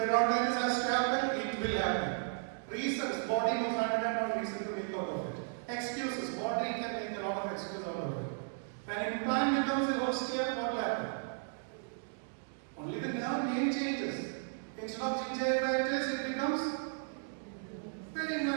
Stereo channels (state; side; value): silent; left; digital silence